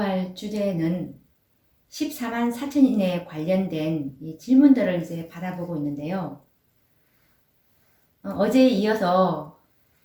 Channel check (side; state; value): both; identical; correlation 1.00